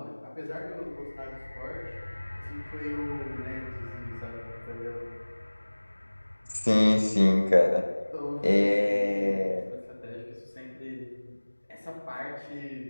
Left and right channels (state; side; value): inverted; both; correlation -1.00